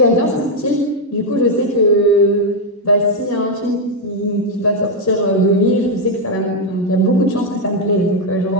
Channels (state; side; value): normal; both; correlation 0.01